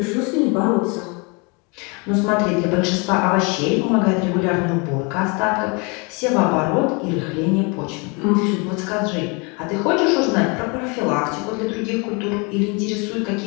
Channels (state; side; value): quieter; right; 31.0 dB